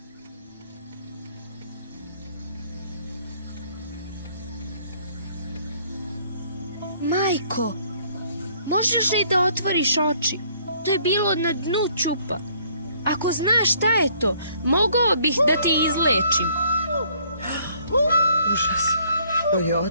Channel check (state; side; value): inverted; both; correlation -0.62